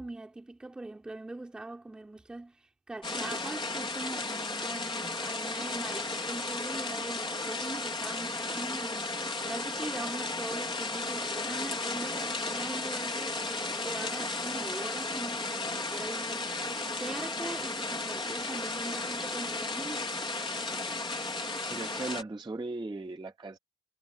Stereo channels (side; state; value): both; normal; correlation 0.41